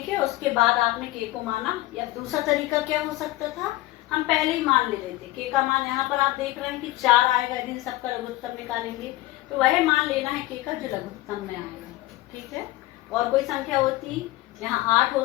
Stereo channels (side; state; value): right; quieter; 17.7 dB